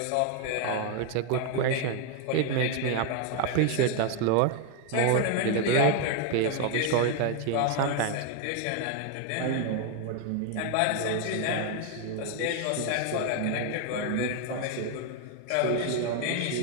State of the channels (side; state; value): both; different; correlation 0.01